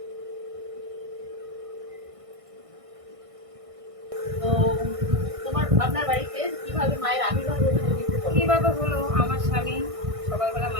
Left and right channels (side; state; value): left; late; 1.6 ms